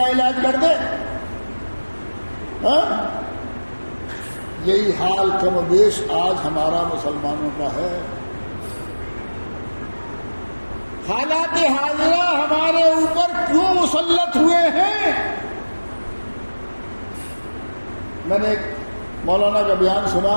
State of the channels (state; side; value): inverted; both; correlation -1.00